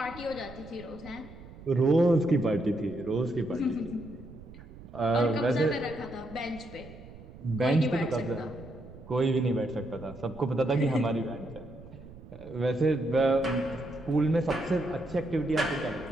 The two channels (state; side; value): noise; right; rumble, 17 dB below the sound